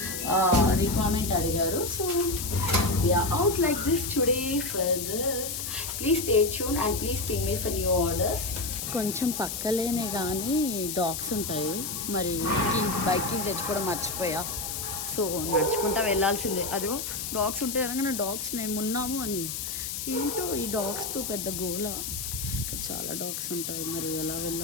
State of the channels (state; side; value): noise; left; hiss, 4 dB below the sound